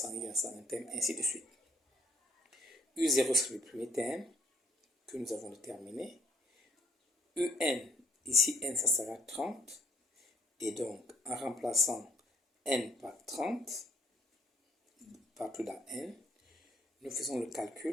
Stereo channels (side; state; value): both; normal; correlation 0.61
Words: il y a 101 thèmes, ainsi de suite. U0 c'est le premier thème que nous avons déterminé. UN, ici n ça sera 30, et donc en remplaçant n par 30, partout dans n, nous faisons le